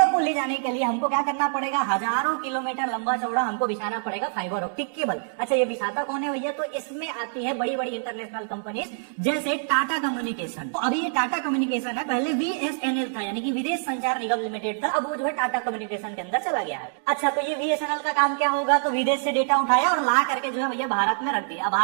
को ले जाने के लिए हमको क्या करना पड़ेगा, हजारों किलोमीटर लंबा चौड़ा हमको बिछाना पड़ेगा फाइबर ऑप्टिक केबल। अच्छा, ये बिछाता कौन है भैया, तो इसमें आती है बड़ी बड़ी इंटरनेशनल कंपनीज जैसे टाटा कम्युनिकेशन। तो अभी ये टाटा कम्युनिकेशन है, पहले बीएसएनएल था यानी कि विदेश संचार निगम लिमिटेड था, अब वो जो है टाटा कम्युनिकेशन के अंदर चला गया है। अच्छा, तो ये बीएसएनएल का काम क्या होगा, तो विदेश से डेटा उठाया और ला करके जो है भैया भारत में रख दिया।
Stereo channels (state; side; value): silent; left; digital silence